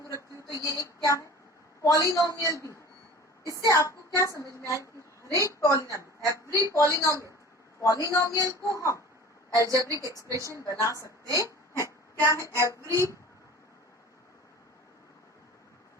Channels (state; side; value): normal; both; correlation 0.41